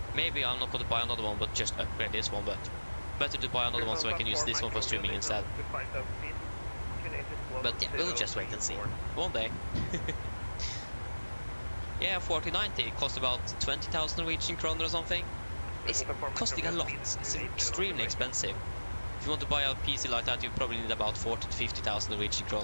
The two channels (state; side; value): inverted; both; correlation -1.00